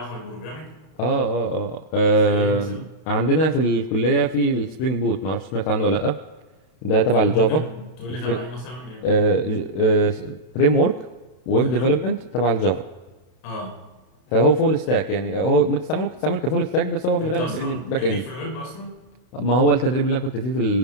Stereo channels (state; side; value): late; right; 32 ms